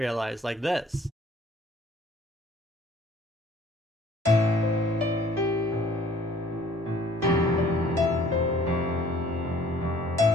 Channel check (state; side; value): normal; both; correlation 0.56